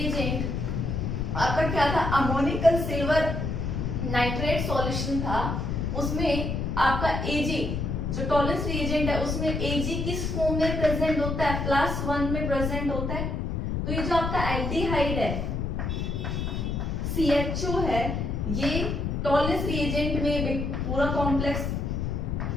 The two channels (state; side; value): noise; left; rumble, 1 dB below the sound